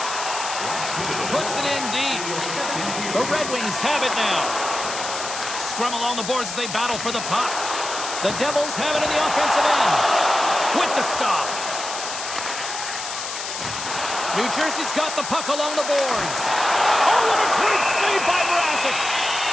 Puts it in deep. The Red Wings have it now. Scrum along the boards as they battle for the puck. The Devils have it in the offensive end. With the stop. New Jersey's got the puck along the boards. Oh, what a great save by Mrazek.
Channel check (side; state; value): left; noise; hiss, 7 dB below the sound